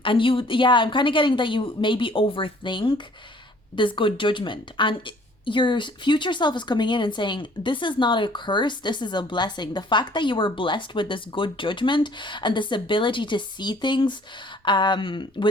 kind of getting that you maybe overthink this good judgment, and your future self is coming in and saying, this is not a curse, this is a blessing. The fact that you were blessed with this good judgment and this ability to see things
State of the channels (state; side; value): normal; both; correlation 0.56